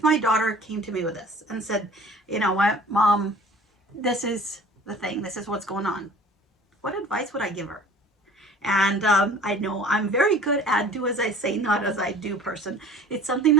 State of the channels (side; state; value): both; normal; correlation 0.47